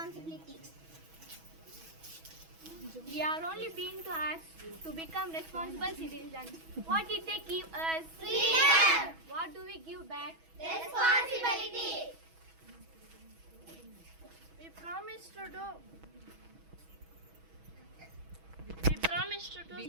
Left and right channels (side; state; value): left; late; 6.2 ms